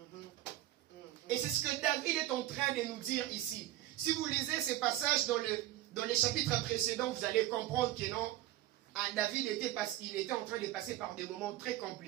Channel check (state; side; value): quieter; left; 14.8 dB